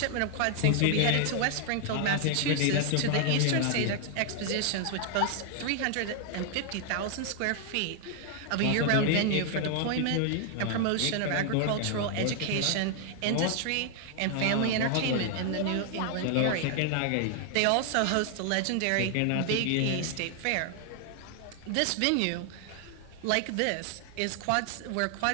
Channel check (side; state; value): both; different; correlation 0.00